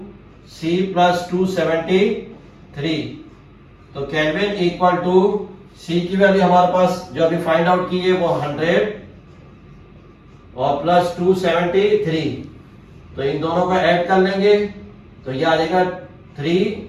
C plus 273। तो केल्विन इक्वल टू C की वैल्यू हमारे पास जो अभी फाइंड आउट की है वो 100 और प्लस 273। तो इन दोनों का ऐड कर लेंगे तो ये आ जाएगा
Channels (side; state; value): both; identical; correlation 1.00